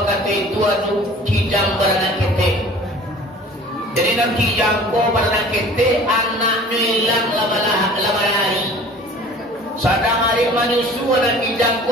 waktu itu anu kijang beranak ketek. Jadi nak kijang ko beranak ketek anaknya hilang lama hari. Sadang hari manusia dan kijang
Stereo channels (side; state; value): both; normal; correlation 0.46